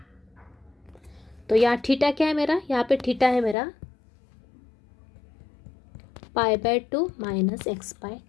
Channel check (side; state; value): right; drops out; at 3.6 s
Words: तो यहाँ थीटा क्या है मेरा, यहाँ पे थीटा है मेरा π/2 माइनस